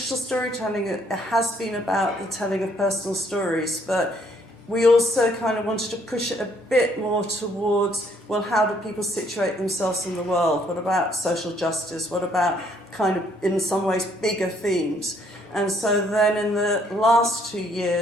storytelling, it has been about the telling of personal stories, but we also kind of wanted to push it a bit more towards, well, how do people situate themselves in the world? What about social justice? What about kind of, in some ways, bigger themes? And so then in the last 2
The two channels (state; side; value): normal; both; correlation 0.67